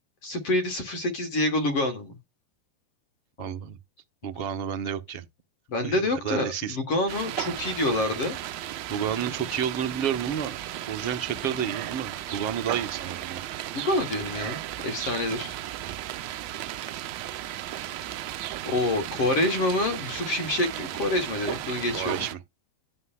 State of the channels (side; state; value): right; late; 7.3 ms